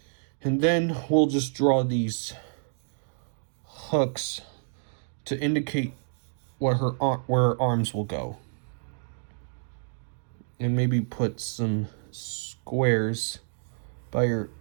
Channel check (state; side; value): silent; left; digital silence